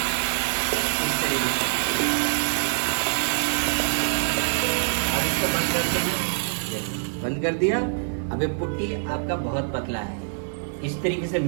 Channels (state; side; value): silent; left; 62 dB below the other